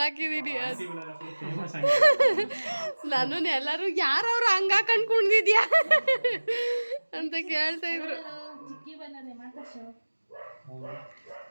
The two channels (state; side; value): inverted; both; correlation -1.00